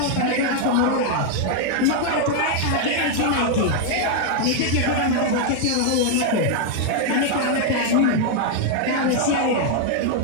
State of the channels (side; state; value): both; different; correlation 0.00